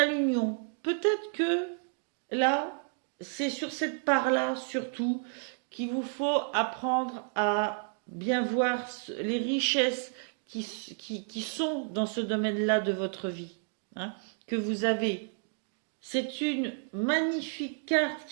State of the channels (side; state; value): left; silent; 57 dB below the other